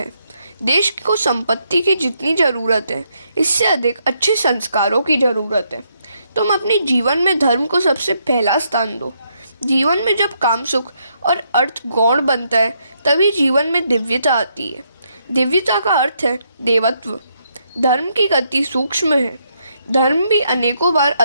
देश को संपत्ति की जितनी जरूरत है इससे अधिक अच्छे संस्कारों की जरूरत है। तुम अपने जीवन में धर्म को सबसे पहला स्थान दो। जीवन में जब काम सुख और अर्थ गौण बनता है तभी जीवन में दिव्यता आती है। दिव्यता का अर्थ है देवत्व। धर्म की गति सूक्ष्म है। धर्म भी अनेकों बार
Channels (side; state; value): both; inverted; correlation -0.76